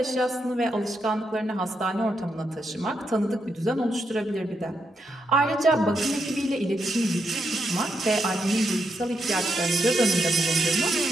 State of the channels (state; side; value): normal; both; correlation 0.81